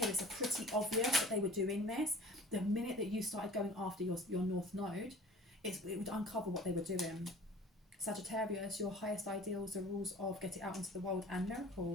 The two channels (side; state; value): both; normal; correlation 0.45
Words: it's pretty obvious that they were doing this. The minute that you started going after your North Node, it would uncover what they were doing. Sagittarius, your highest ideals, the rules of getting out into the world and